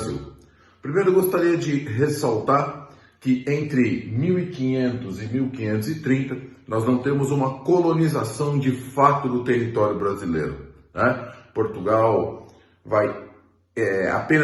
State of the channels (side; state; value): both; identical; correlation 1.00